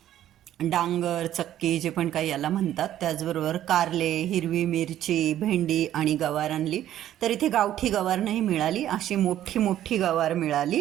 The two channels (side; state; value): left; quieter; 12.1 dB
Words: डांगर, चक्की जे पण काही याला म्हणतात, त्याचबरोबर कारले, हिरवी मिरची, भेंडी आणि गवार आणली. तर इथे गावठी गवार नाही मिळाली, अशी मोठी मोठी गवार